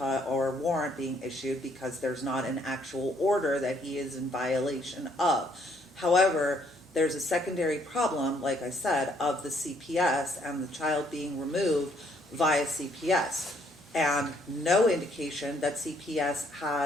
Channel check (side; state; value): both; normal; correlation 0.67